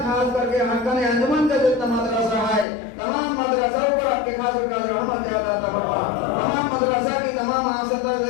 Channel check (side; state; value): right; drops out; at 2.7 s